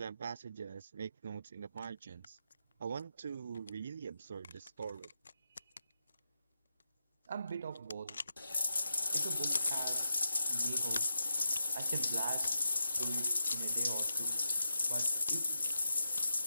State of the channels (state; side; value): inverted; both; correlation -0.87